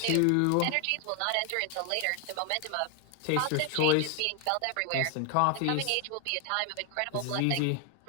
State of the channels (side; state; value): both; different; correlation 0.00